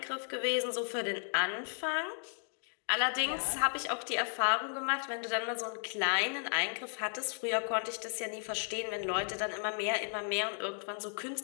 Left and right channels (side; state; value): right; silent; 55 dB below the other